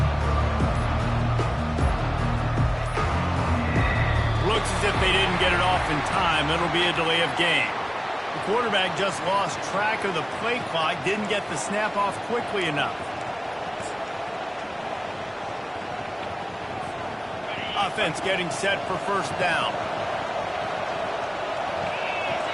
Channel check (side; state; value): both; identical; correlation 1.00